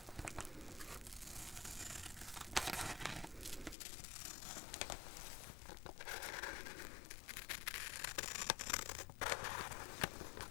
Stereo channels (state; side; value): drops out; right; at 3.8 s